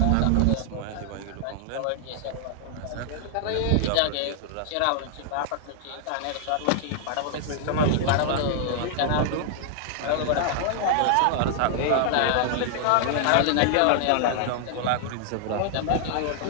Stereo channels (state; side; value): different; both; correlation 0.00